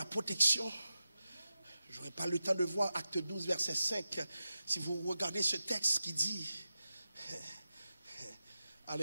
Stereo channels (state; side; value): inverted; both; correlation -0.91